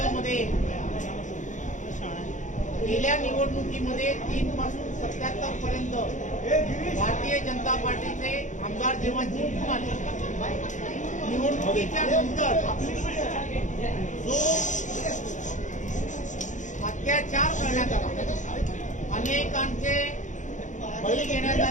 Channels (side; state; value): right; late; 0.36 ms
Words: गेल्या निवडणुकीमध्ये 3 पासून 77 पर्यंत भारतीय जनता पार्टीचे आमदार जेव्हा जिंकून आले, निवडणुकीच्या नंतर जो अत्याचार करण्यात आला, अनेकांचे बळी घेण्यात